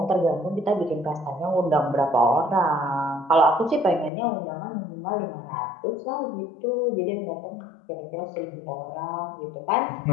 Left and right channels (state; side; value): drops out; right; at 4.1 s